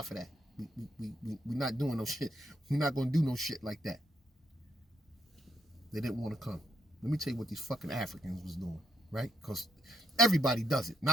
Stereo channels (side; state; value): both; normal; correlation 0.76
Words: for that. We're not doing no shit. We're not going to do no shit like that. They didn't want to come. Let me tell you what these fucking Africans was doing, right? Because everybody does it.